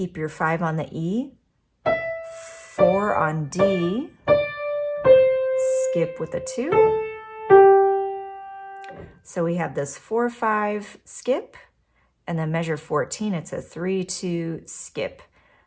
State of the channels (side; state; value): both; identical; correlation 1.00